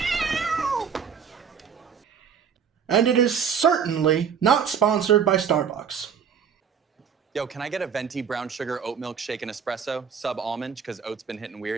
And it is certainly not sponsored by Starbucks. Yo, can I get a venti brown sugar oat milk shake and espresso, sub almond, because oat's been hitting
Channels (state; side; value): quieter; left; 7.1 dB